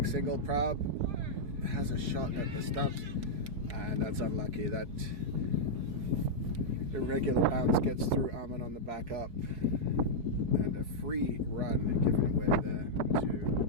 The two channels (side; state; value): left; late; 4.7 ms